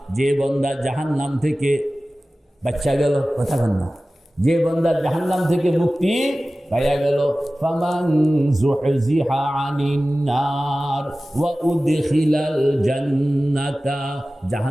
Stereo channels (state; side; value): normal; both; correlation 0.97